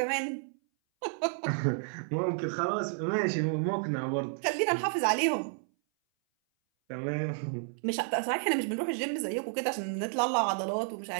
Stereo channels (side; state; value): left; silent; 57 dB below the other